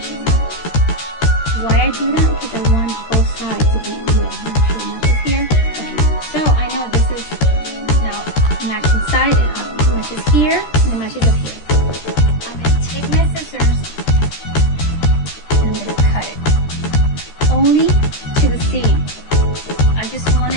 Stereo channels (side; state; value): right; late; 13 ms